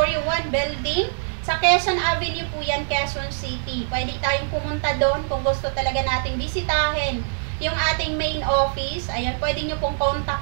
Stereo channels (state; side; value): silent; left; digital silence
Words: 1 Building, sa Quezon Avenue po yan, Quezon City. Pwede tayong pumunta doon kung gusto talaga nating bisitahin yung ating main office. Ayan, pwede nyo pong